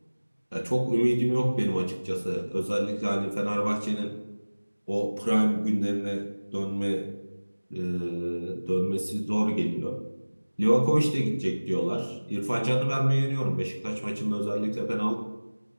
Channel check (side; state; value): both; inverted; correlation -1.00